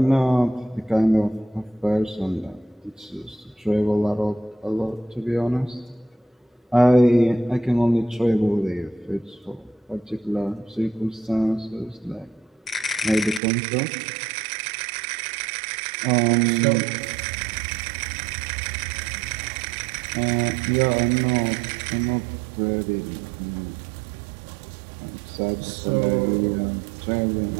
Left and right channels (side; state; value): left; drops out; at 13.4 s